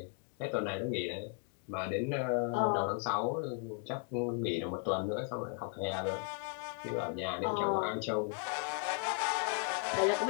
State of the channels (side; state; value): right; quieter; 34.4 dB